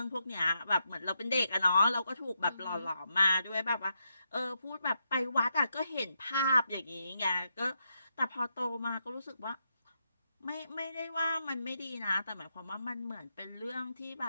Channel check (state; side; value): inverted; both; correlation -0.82